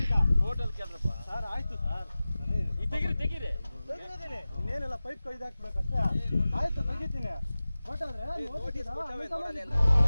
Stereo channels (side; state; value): both; inverted; correlation -0.97